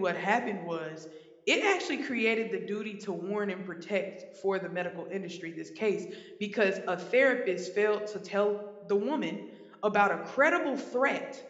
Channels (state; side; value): identical; both; correlation 1.00